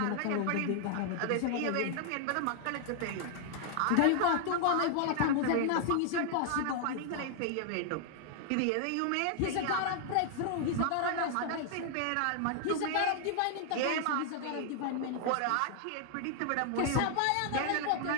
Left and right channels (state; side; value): different; both; correlation 0.00